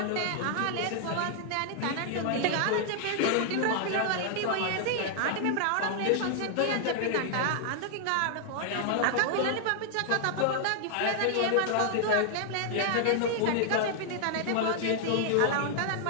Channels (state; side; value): different; both; correlation 0.00